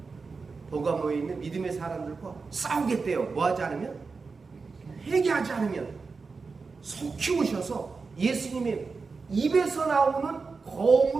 버가모에 있는 믿음의 사람들과 싸우겠대요. 뭐하지 않으면? 회개하지 않으면. 속 키우셔서 예수님의 입에서 나오는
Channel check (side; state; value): left; quieter; 4.5 dB